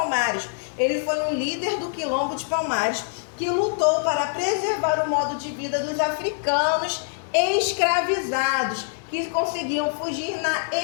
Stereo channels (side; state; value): right; silent; digital silence